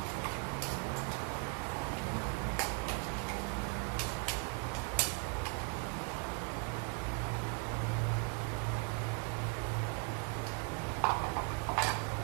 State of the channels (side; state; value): left; quieter; 37.2 dB